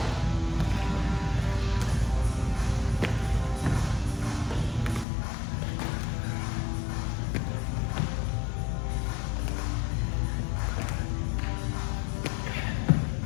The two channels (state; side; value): drops out; right; at 5.1 s